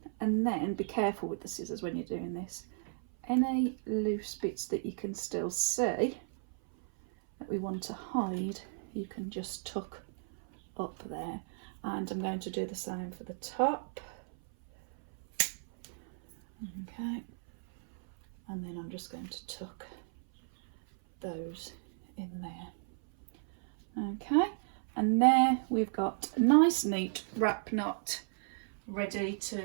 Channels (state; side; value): silent; left; 55 dB below the other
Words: and then be careful with the scissors when you're doing this. Any loose bits that you can still see that we want to hide, you can just tuck up there, and I'm going to do the same for the top. Okay, and then I'm just going to tuck those in there. Okay, and there we've got a nice neat wrap knot ready